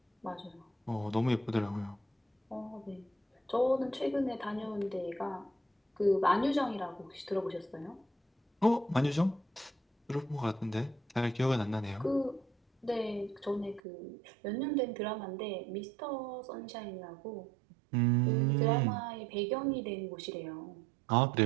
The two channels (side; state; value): left; drops out; at 13.8 s